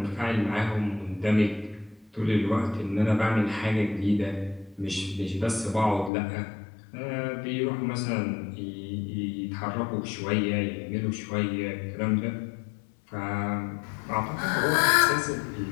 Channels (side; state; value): right; drops out; at 6.1 s